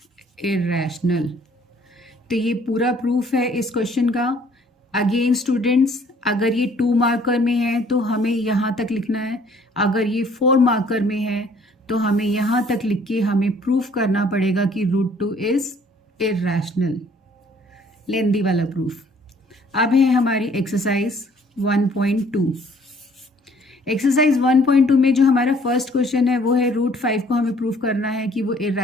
irrational. तो ये पूरा proof है इस question का। Again students, अगर ये 2 marker में है तो हमें यहाँ तक लिखना है, अगर ये 4 मार्कर में है तो हमें यहाँ तक लिख के हमें प्रूफ करना पड़ेगा कि √2 इज इरैशनल, लेंदी वाला प्रूफ। अब है हमारी एक्सरसाइज 1.2। एक्सरसाइज 1.2 में जो हमारा फर्स्ट क्वेश्चन है वो है √5 को हमें प्रूफ करना है कि वो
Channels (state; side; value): normal; both; correlation 0.59